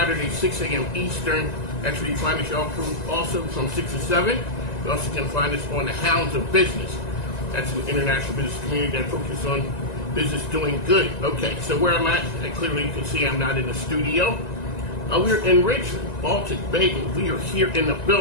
6 a.m. Eastern. That's where you find us also from 6 to 7. You also can find us on the Hounds of Business. That's an international business community that focuses on business doing good. Okay, so where I'm at, clearly you can see I'm not in the studio. We're in Richmond, Baltic Bagel. We are here in the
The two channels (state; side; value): late; right; 1.9 ms